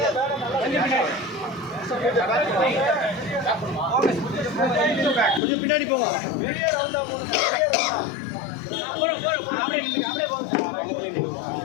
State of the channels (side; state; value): right; drops out; at 5.4 s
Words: கொஞ்சம் பின்னாடி போங்க.